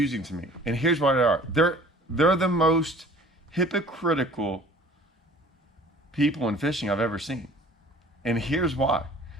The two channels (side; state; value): both; normal; correlation 0.49